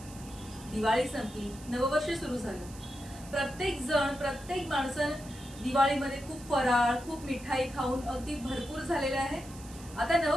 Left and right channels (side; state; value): right; noise; hiss, 18 dB below the sound